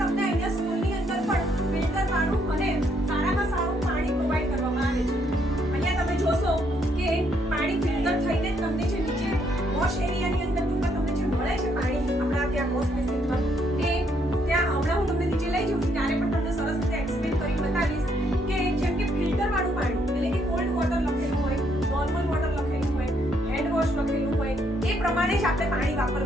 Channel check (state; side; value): normal; both; correlation 0.72